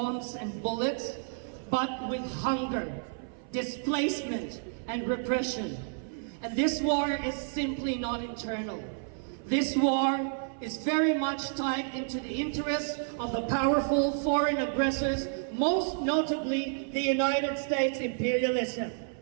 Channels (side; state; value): left; silent; 58 dB below the other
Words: and bullets, but with hunger, displacement, and repression. And this war is simply not internal. This war is very much tied into the interests of the powerful foreign aggressors, most notably the United States imperialism.